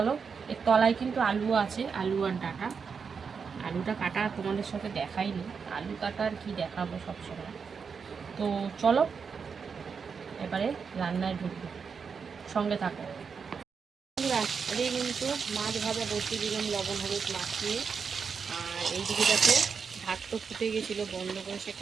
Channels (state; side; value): quieter; left; 5.9 dB